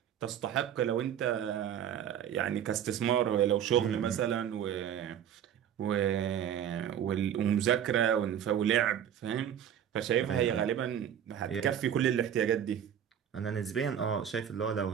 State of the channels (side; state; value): left; quieter; 9.5 dB